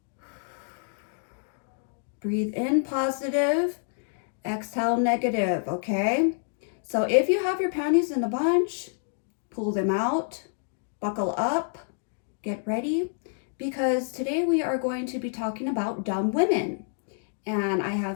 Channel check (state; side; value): silent; right; digital silence